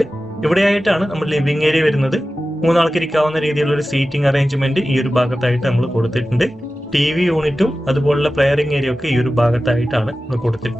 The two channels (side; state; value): both; normal; correlation 0.95